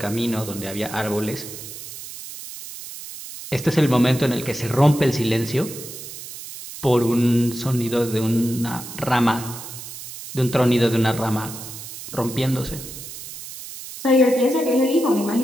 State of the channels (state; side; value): noise; right; hiss, 12 dB below the sound